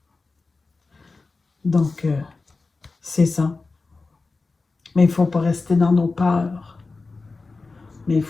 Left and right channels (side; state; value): right; quieter; 3.8 dB